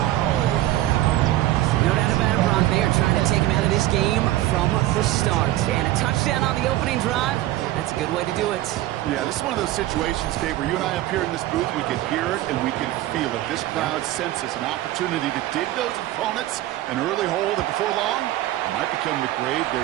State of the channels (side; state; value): left; quieter; 15.2 dB